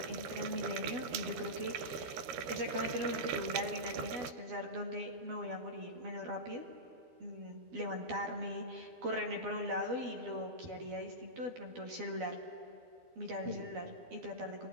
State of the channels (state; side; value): late; left; 13 ms